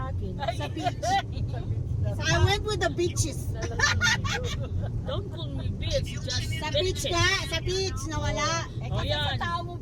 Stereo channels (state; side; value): identical; both; correlation 1.00